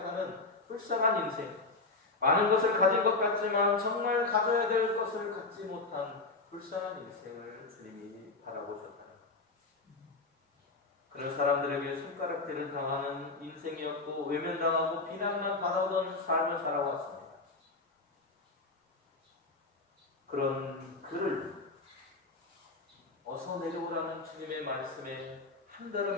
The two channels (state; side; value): quieter; right; 3.5 dB